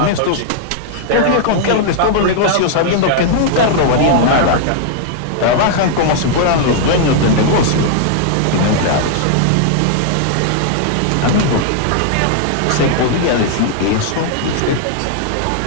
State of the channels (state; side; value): different; both; correlation -0.01